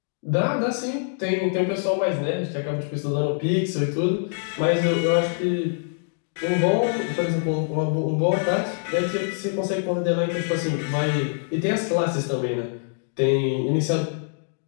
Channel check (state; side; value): silent; right; digital silence